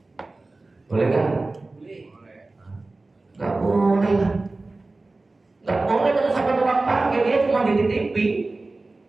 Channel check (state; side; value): quieter; left; 3.3 dB